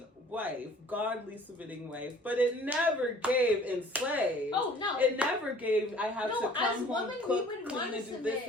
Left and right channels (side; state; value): both; normal; correlation 0.52